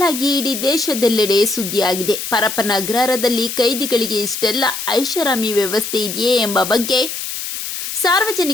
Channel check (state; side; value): noise; left; hiss, 6 dB below the sound